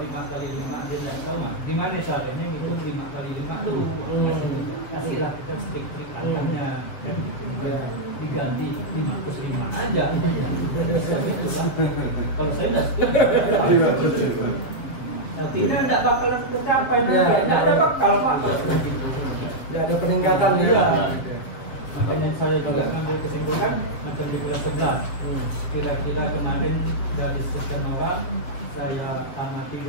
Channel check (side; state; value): right; late; 7.5 ms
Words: 5x5 dia tidak tahu kan. Gimana caranya ngitung 5x5 tuh? Kasihlah kita trik-trik angkanya. Diganti 5+5 aja. Kalau saya tidak setuju. Artinya tidak bakal tercapai. Tidak ada bakal Pak. Tidak ada peningkatan ya. Makanya saya juga ngambil kesimpulan macam di kelas 11. Kira-kira kemarin dari sekian orang saya amati